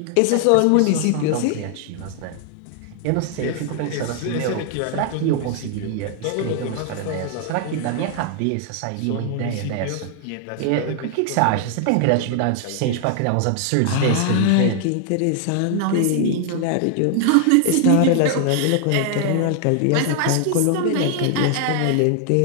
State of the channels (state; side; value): different; both; correlation 0.00